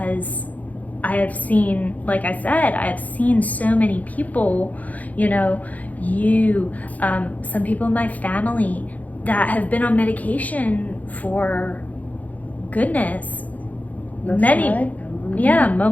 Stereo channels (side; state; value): right; late; 0.076 ms